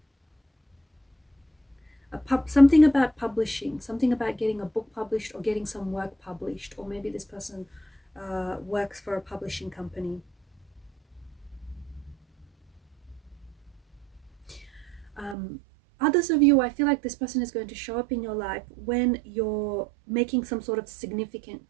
Something about publishing, something about getting a book published or getting some work published, or maybe this person works for a publishing company. Others of you, I feel like this person is going to show up in your life when you're making some sort of significant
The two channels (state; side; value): drops out; left; at 15.4 s